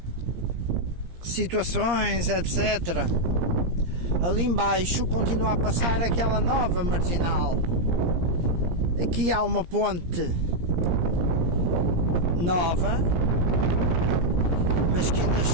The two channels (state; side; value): late; left; 17 ms